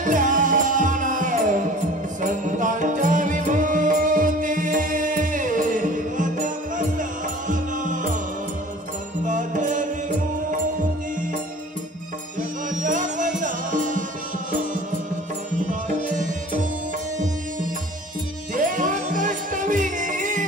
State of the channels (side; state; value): both; normal; correlation 0.45